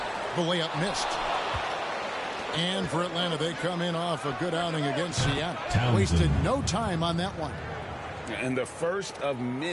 The layup missed. And for Atlanta, they come in off a good outing against Seattle. Wasted no time on that one. And the first of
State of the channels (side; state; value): both; identical; correlation 1.00